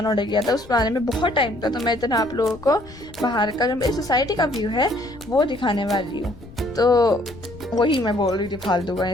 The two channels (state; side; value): noise; left; rumble, 19 dB below the sound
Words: ऑर्डर किया था, उस आने में बहुत टाइम था। तो मैं इतना आप लोगों को बाहर का जो मेरी सोसाइटी का व्यू है वो दिखाने वाली हूँ। तो वही मैं बोल रही थी फालतू का